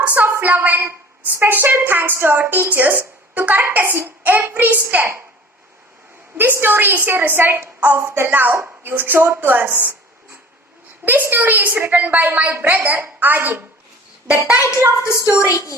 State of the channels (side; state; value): both; normal; correlation 0.44